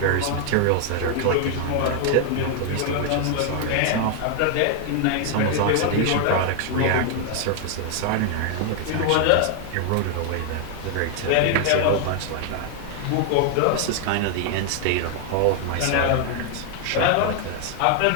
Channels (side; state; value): both; different; correlation 0.00